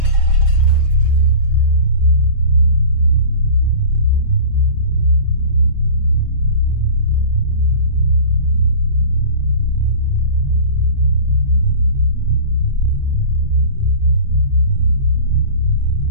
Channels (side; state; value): left; late; 5.2 ms